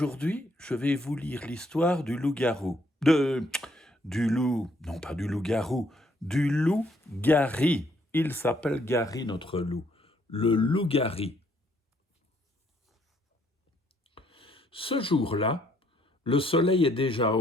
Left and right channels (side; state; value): both; normal; correlation 0.69